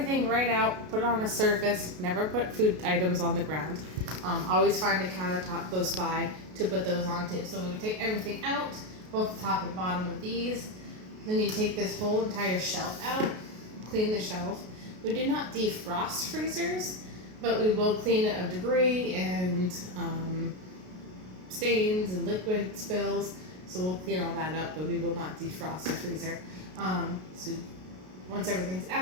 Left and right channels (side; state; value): left; late; 33 ms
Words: right out, put it on a surface, never put food items on the ground. Always find a countertop close by to put those onto. So we would take everything out, both the top and bottom of these. Then you take this whole entire shelf out, clean the shelf. We do not defrost freezers, but we will clean it of debris and stains and liquid spills. So we'll clean all that up, but we will not defrost the freezer. So once everything's